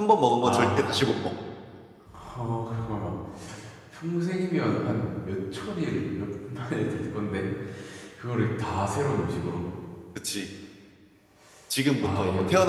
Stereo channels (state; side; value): identical; both; correlation 1.00